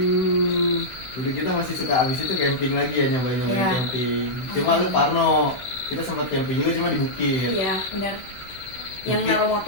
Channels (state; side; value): late; right; 16 ms